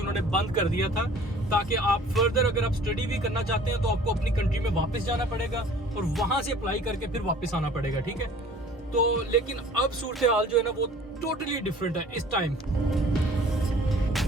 उन्होंने बंद कर दिया था, ताकि आप फर्दर अगर आप स्टडी भी करना चाहते हैं तो आपको अपनी कंट्री में वापस जाना पड़ेगा और वहाँ से अप्लाई करके फिर वापस आना पड़ेगा। ठीक है, तो लेकिन अब सूरत हाल जो है ना वो टोटली डिफरेंट है इस टाइम।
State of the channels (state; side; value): normal; both; correlation 0.49